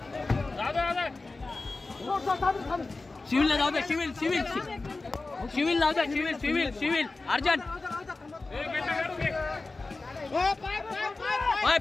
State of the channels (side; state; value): right; quieter; 3.5 dB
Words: जाऊ द्या, सिव्हिल सिव्हिल सिव्हिल जाऊ द्या, सिव्हिल सिव्हिल सिव्हिल अर्जंट.